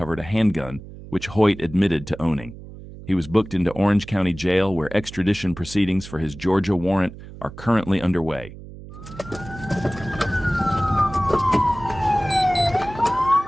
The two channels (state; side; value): noise; right; hum, 15 dB below the sound